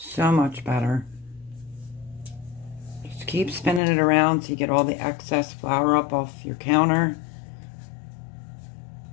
much better. Just keep spinning it around so you get all the excess flour up off your counter.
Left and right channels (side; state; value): right; drops out; at 3.8 s